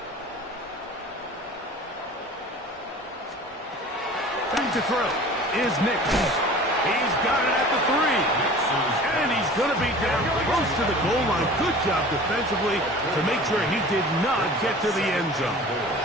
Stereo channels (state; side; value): normal; both; correlation 0.42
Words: Back to throw is Nick. He's got it at the 3. And he's going to be down close to the goal line. Good job defensively to make sure he did not get to the end zone.